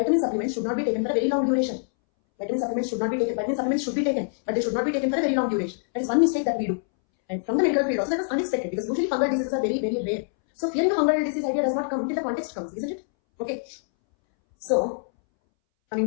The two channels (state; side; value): silent; right; 62 dB below the other